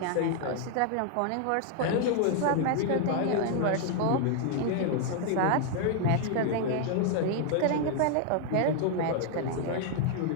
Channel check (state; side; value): different; both; correlation 0.00